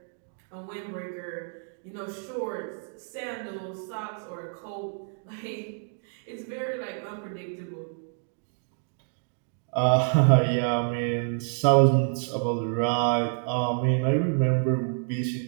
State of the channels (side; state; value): left; silent; 59 dB below the other